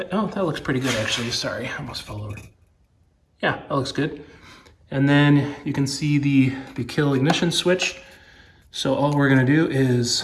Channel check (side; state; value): both; identical; correlation 1.00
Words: looks pretty good actually, sorry, I almost fell over. Yeah, that looks good. And then you can see the kill ignition switch. So all we're gonna do is,